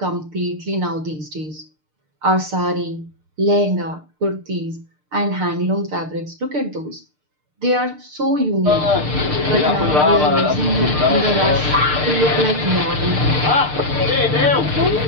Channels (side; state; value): left; late; 6.6 ms